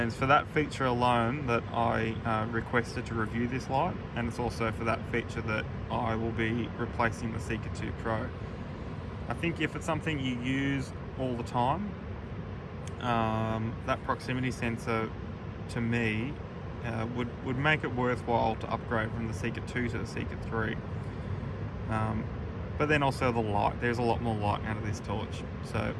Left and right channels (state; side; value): identical; both; correlation 1.00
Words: it's for that feature alone that I requested to review this light, and it's also for that feature that I will be replacing the Seeker 2 Pro. I think if it's something you use all the time, that proximity sensor, to me, would make it worthwhile to upgrade from the Seeker 2 to the Seeker 3. But then also the light, there's a lot more light out of this torch. So